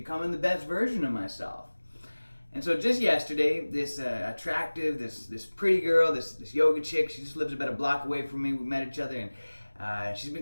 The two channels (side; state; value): both; inverted; correlation -1.00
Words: the best version of myself. And so just yesterday, this attractive, this pretty girl, this yoga chick, she just lives about a block away from me. We met each other, and she's